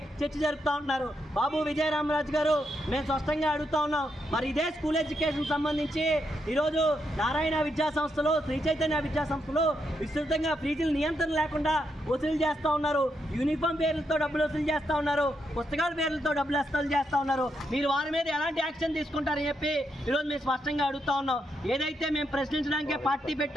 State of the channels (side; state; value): both; normal; correlation 0.81